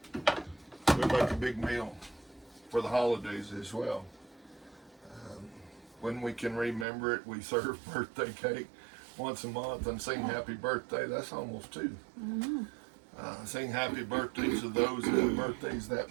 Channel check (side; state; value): left; drops out; at 6.9 s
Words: we make a big meal for the holidays as well. When we can remember it, we serve birthday cake once a month and sing happy birthday. That's almost 2. Mm-hmm. Sing happy birthdays to those that have birthdays that